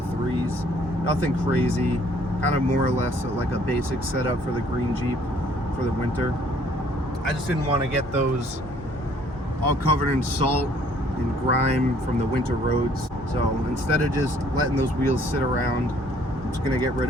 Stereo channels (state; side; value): normal; both; correlation 0.61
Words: Nothing crazy, kind of more or less like a basic setup for the green Jeep for the winter. I just didn't want to get those all covered in salt and grime from the winter roads. So instead of just letting those wheels sit around, I'm just gonna get rid